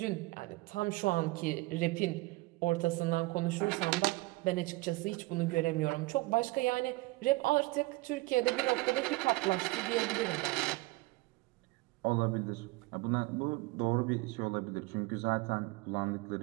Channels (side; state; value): left; quieter; 22.2 dB